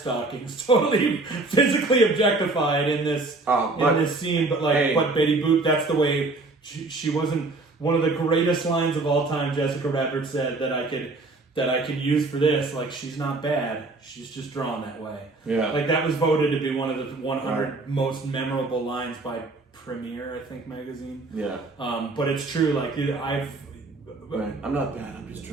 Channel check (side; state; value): left; quieter; 3.3 dB